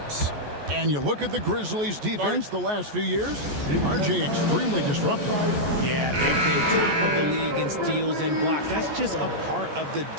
And you look at the Grizzlies' defense the last few years, RJ extremely disruptive. Yeah, they've been top of the league in steals and blocks. That's just a part of the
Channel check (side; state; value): left; late; 14 ms